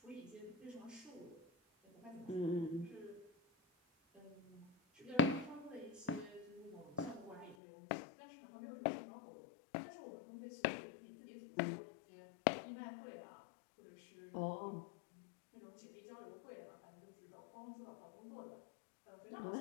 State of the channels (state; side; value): drops out; right; at 7.6 s